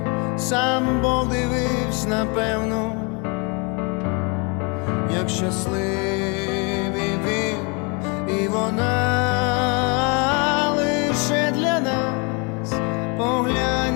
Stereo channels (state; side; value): quieter; right; 32.7 dB